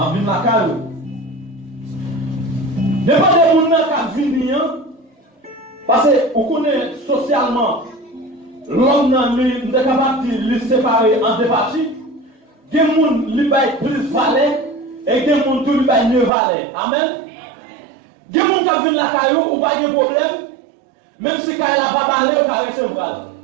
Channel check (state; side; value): drops out; left; at 16.3 s